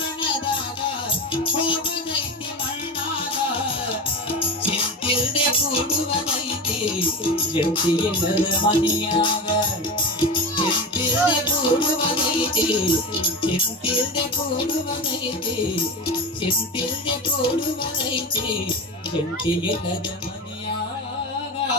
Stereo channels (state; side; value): normal; both; correlation 0.24